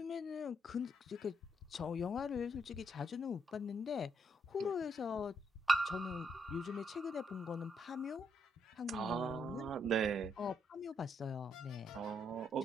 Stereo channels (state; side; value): normal; both; correlation 0.76